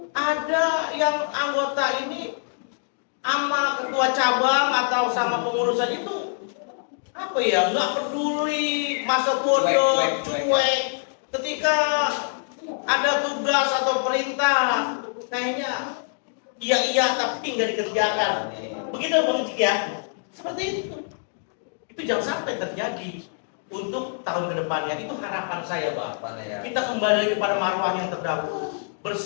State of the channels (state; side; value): silent; right; digital silence